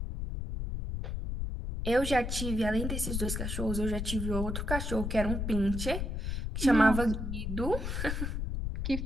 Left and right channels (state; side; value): noise; left; rumble, 3 dB below the sound